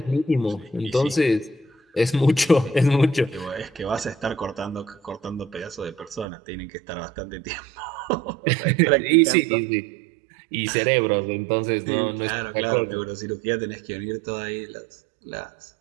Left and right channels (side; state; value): left; drops out; at 6.2 s